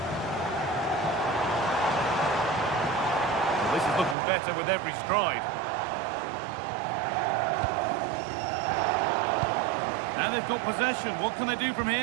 Well, this is looking better with every stride. Now they've got possession. What can they do from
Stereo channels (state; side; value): drops out; left; at 4.2 s